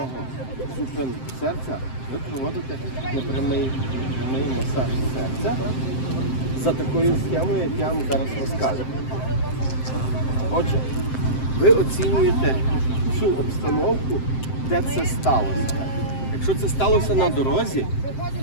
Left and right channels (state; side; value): late; right; 7.7 ms